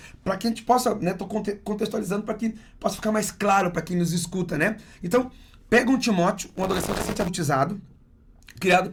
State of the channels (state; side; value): identical; both; correlation 1.00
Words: para que a gente possa, né, tô contextualizando para que possa ficar mais claro para quem nos escuta, né? Então, pega um Timóteo, um adolescente adultizado, criado